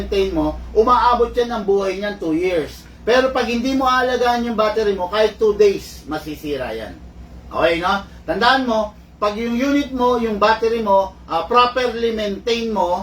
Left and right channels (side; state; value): both; identical; correlation 1.00